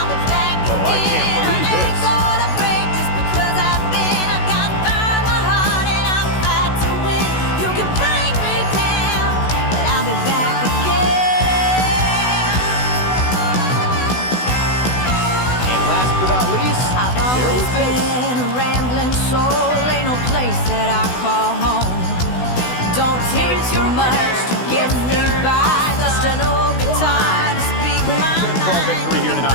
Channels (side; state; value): right; late; 16 ms